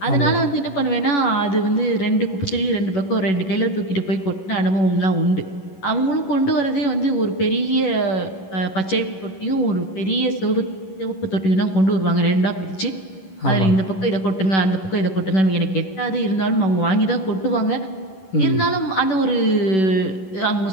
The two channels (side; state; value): right; late; 11 ms